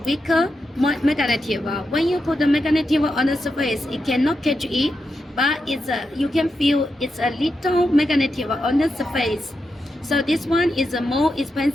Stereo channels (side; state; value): both; normal; correlation 0.87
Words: magnetic. When you put the magnetic on the surface, it cannot catch it, but it's you can feel it's a little magnetic on the surface. So this one is more